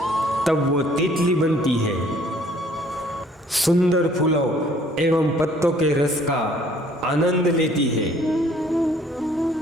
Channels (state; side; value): normal; both; correlation 0.59